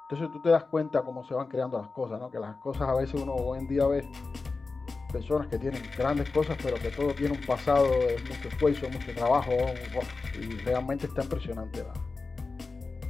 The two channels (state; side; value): quieter; right; 4.0 dB